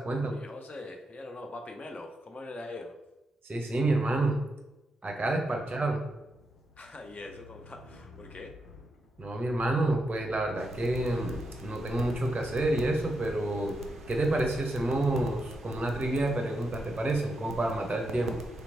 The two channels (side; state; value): both; normal; correlation 0.84